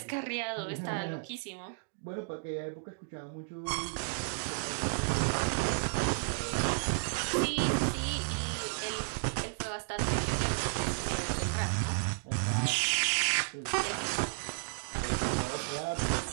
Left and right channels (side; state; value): left; silent; digital silence